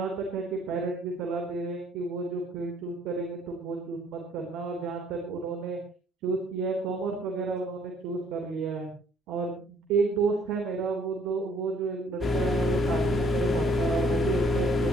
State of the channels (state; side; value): normal; both; correlation 0.62